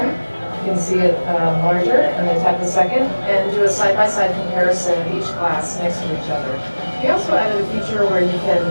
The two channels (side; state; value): both; inverted; correlation -1.00